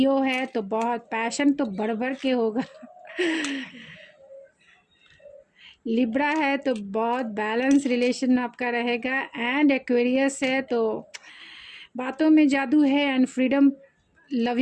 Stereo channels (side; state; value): both; identical; correlation 1.00